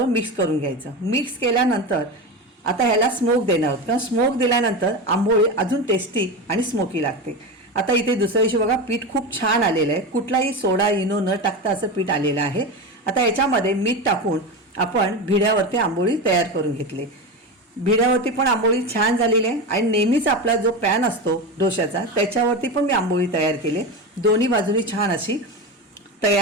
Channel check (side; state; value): both; normal; correlation 0.21